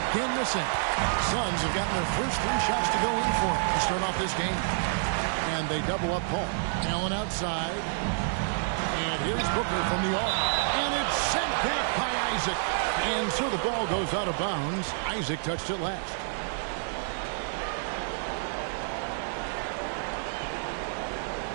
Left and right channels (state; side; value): silent; left; 59 dB below the other